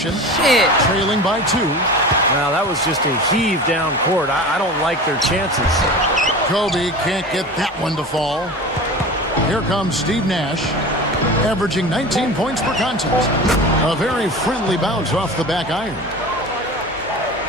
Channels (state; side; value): normal; both; correlation 0.33